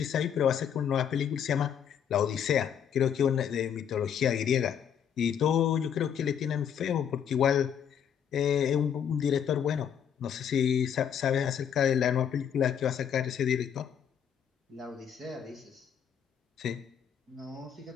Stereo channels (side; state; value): right; quieter; 8.4 dB